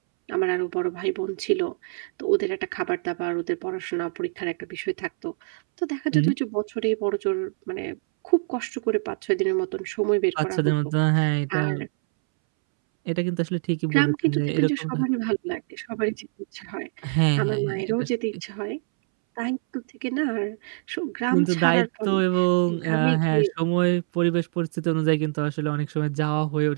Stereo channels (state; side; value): silent; left; 62 dB below the other